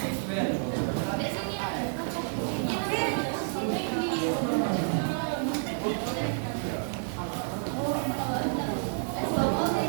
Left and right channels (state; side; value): silent; left; digital silence